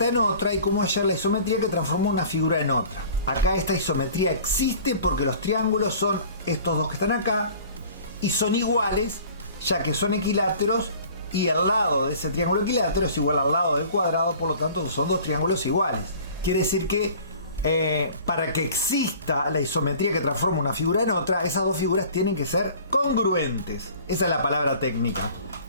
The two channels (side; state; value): both; inverted; correlation -0.47